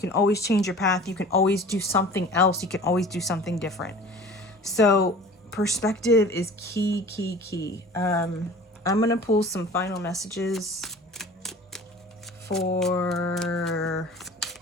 always change your path. You can always do something else. You can always do something different. So perspective is key. I'm going to pull some final messages for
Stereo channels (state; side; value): normal; both; correlation 0.43